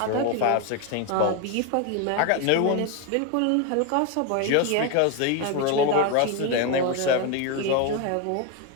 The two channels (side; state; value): both; different; correlation 0.02